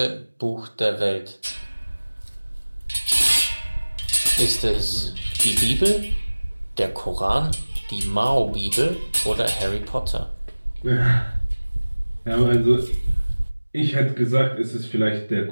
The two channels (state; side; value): inverted; both; correlation -1.00